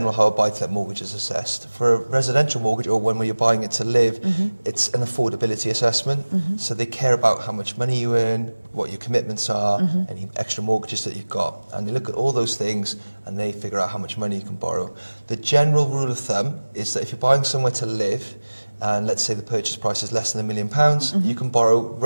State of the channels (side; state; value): both; inverted; correlation -1.00